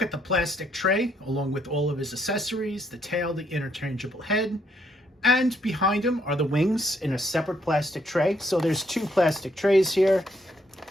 at the plastic tray along with all of his accessories, the tail, the interchangeable head. And behind him are the wings in a separate plastic tray. So there's two plastic trays here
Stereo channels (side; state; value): both; normal; correlation 0.72